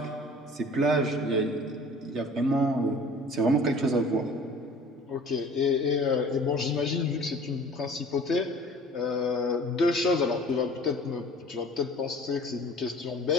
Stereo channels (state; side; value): normal; both; correlation 0.47